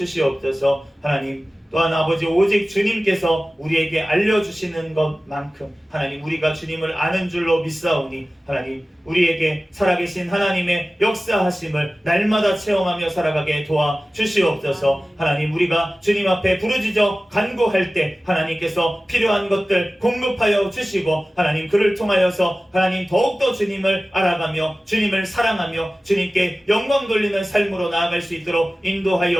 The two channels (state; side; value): normal; both; correlation 0.96